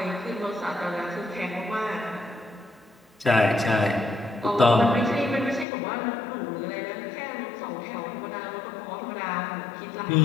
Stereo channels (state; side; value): drops out; right; at 5.7 s